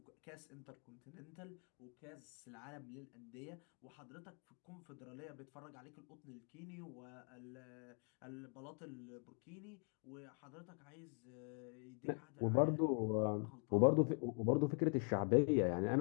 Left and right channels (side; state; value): right; quieter; 39.5 dB